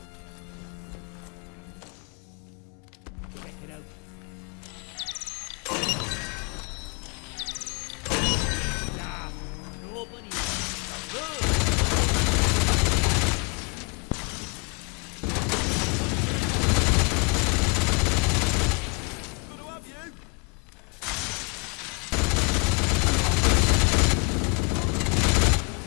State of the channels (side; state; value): right; quieter; 33.5 dB